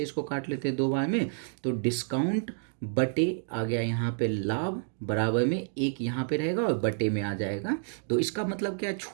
इसको काट लेते हैं 2 बार में, तो डिस्काउंट बटे आ गया यहाँ पे लाभ, बराबर में 1 यहाँ पे रहेगा और बटे में आ जाएगा। तो इसका मतलब क्या है,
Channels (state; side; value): silent; left; digital silence